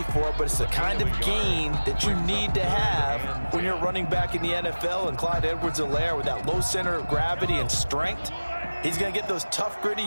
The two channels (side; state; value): both; inverted; correlation -1.00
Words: for, but it's the kind of gain that you need to have when you're running back in the NFL. And Clyde Edwards-Helaire, with that low center of gravity and strength, he's going to get those tough, gritty